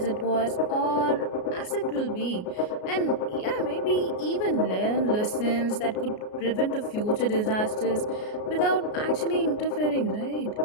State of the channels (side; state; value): right; late; 33 ms